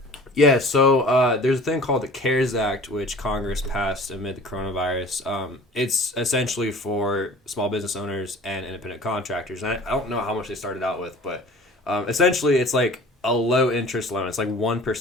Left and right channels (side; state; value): both; normal; correlation 0.44